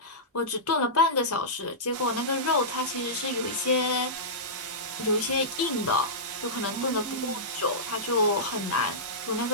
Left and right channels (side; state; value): both; normal; correlation -0.16